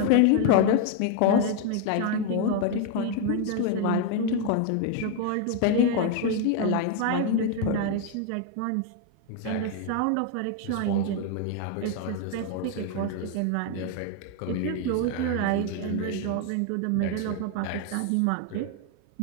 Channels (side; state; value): both; different; correlation 0.00